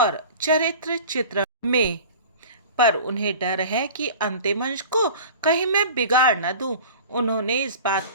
चरित्र चित्र में। पर उन्हें डर है कि अंतिम अंश को कहीं मैं बिगाड़ न दूं। उन्होंने इस बात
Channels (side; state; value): both; inverted; correlation -0.39